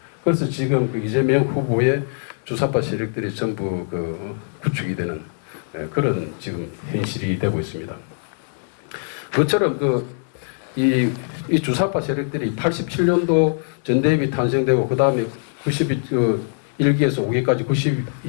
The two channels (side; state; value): right; silent; 64 dB below the other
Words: 그래서 지금 그 이재명 후보의 주사파 세력들이 전부 그 구축이 되는 그런 지금 현실이 되고 있습니다. 그처럼 이 주사파 세력들이 87년도 전대협이 탄생되고 그 다음에 1기에서 5기까지